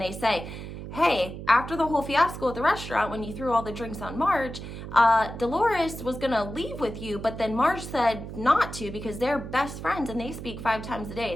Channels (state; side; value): noise; right; hum, 10 dB below the sound